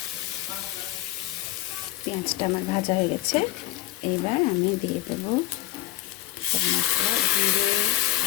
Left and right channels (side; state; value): right; quieter; 16.3 dB